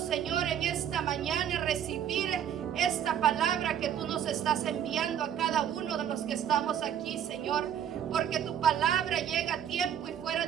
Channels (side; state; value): left; quieter; 9.4 dB